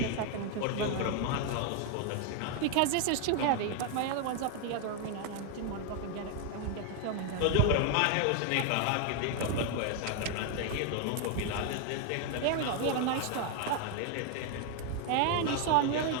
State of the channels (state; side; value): different; both; correlation 0.01